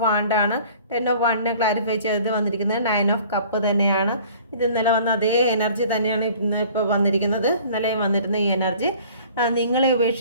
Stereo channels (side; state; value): both; inverted; correlation -0.50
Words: Wand ആണ്. 10 of Wand ക്ലാരിഫൈ ചെയ്ത് വന്നിരിക്കുന്നത് 9 of Cup തന്നെയാണ്. ഇത് ഇന്നലെ വന്ന അതേ എനർജി തന്നെയാണ് ഇപ്പോൾ വന്നിരിക്കുന്നത്. ഇന്നലെ വന്നിരുന്ന ഈ എനർജി നിങ്ങളെ